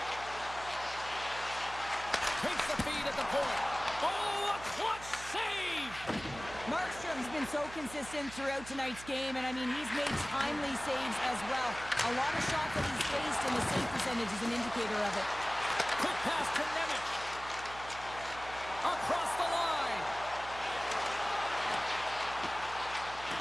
Takes the feed at the point. Oh, a clutch save! Markstrom's been so consistent throughout tonight's game, and I mean, he's made timely saves as well. A lot of shots that he's faced, and the save percentage is an indicator of it. Quick pass to Nemec. Across the line.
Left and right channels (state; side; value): noise; right; hum, 15 dB below the sound